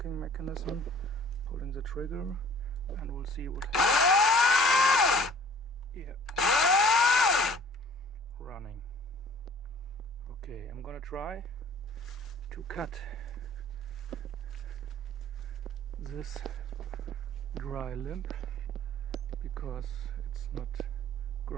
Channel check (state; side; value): normal; both; correlation 0.50